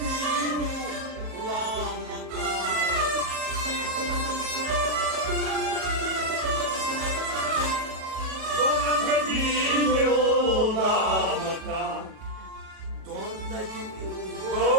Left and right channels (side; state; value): left; late; 37 ms